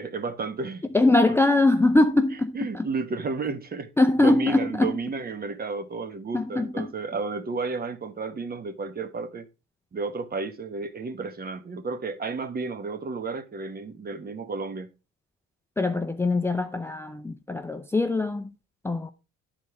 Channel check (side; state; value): both; normal; correlation 0.77